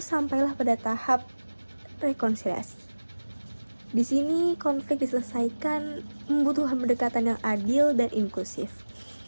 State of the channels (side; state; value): both; inverted; correlation -1.00